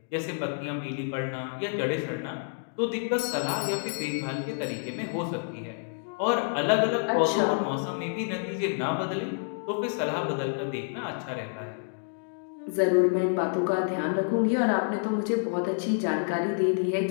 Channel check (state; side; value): silent; right; digital silence